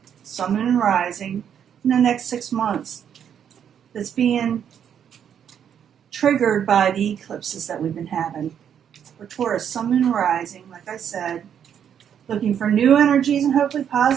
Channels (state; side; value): quieter; left; 8.7 dB